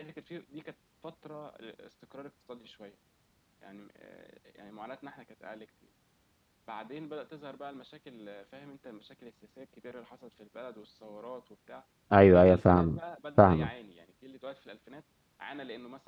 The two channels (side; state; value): both; identical; correlation 1.00